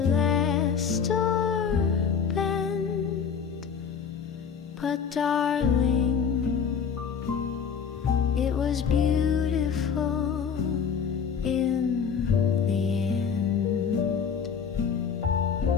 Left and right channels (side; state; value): right; quieter; 6.7 dB